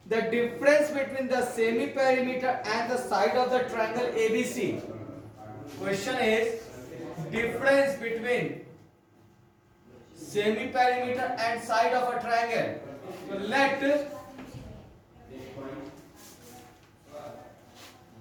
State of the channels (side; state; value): both; identical; correlation 1.00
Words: The difference between the semi-perimeter and the side of the triangle ABC. Question is difference between semi-perimeter and side of a triangle. So let